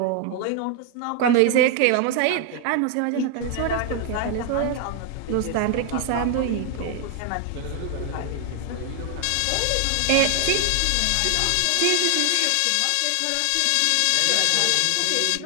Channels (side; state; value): both; different; correlation 0.00